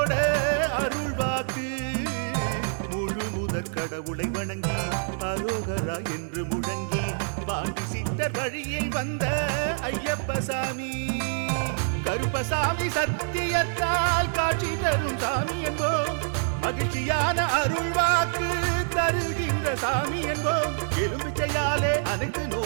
அருள்வாக்கு முழு முதற் கடவுளை வணங்கி அரோகரா என்று முழங்கி பாண்டி சித்தர் வழியில் வந்த ஐயப்பசாமி கருப்பசாமி சத்தியத்தால் காட்சி தரும் சாமி என்போம் மகிழ்ச்சியான அருள்வாக்கு தருகின்ற சாமி என்போம் எலும்பிச்சையாலே அனைத்து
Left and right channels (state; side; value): silent; left; digital silence